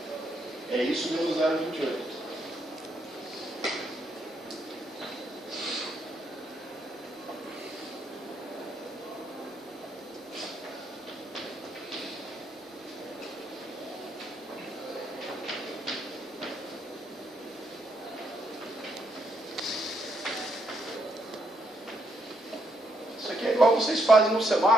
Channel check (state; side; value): normal; both; correlation 0.75